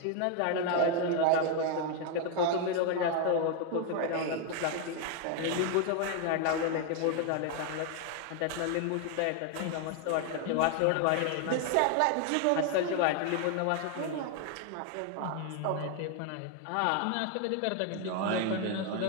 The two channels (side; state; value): both; different; correlation 0.00